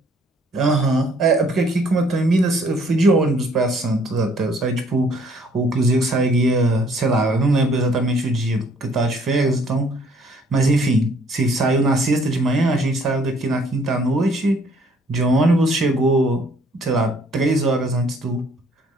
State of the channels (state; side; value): normal; both; correlation 0.61